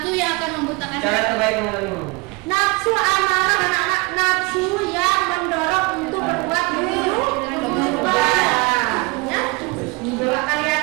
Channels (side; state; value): left; quieter; 26.5 dB